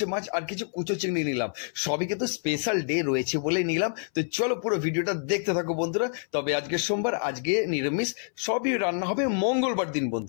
মাছ আর কিছু কুচো চিংড়ি নিলাম। সবই কিন্তু স্পেশাল ডে রয়েছে বলে নিলাম। তো চলো পুরো ভিডিওটা দেখতে থাকো বন্ধুরা। তবে আজকে সোমবার, আজকে নিরামিষ, সবই রান্না হবে মঙ্গলবার দিন বন্ধু।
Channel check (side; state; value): right; silent; 60 dB below the other